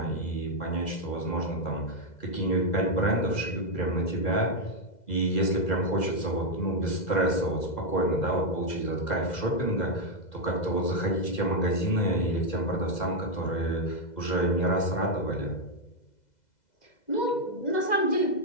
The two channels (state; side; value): late; right; 2.0 ms